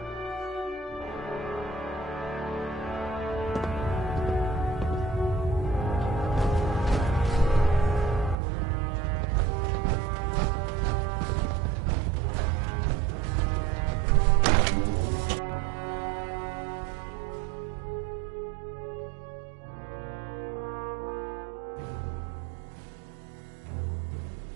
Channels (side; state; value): left; drops out; at 8.3 s